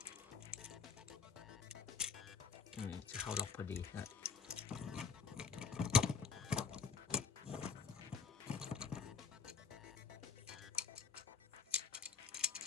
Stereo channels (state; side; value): quieter; right; 6.0 dB